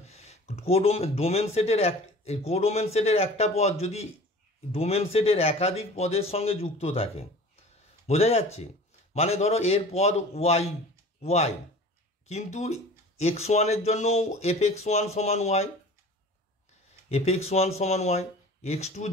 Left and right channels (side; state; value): both; normal; correlation 0.42